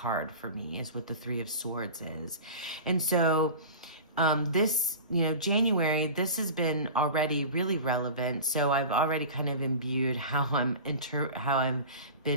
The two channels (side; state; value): both; inverted; correlation -0.34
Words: for me, is what the Three of Swords is. And so this, January, this has been already really relevant. So I've already kind of imbued how I've